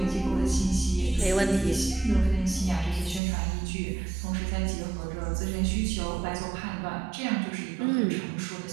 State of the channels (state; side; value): drops out; left; at 3.2 s